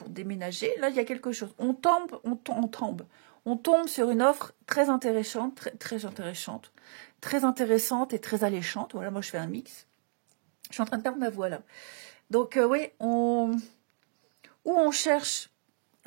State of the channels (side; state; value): left; silent; digital silence